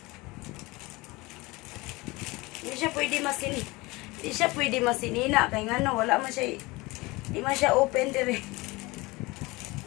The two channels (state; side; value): quieter; right; 22.8 dB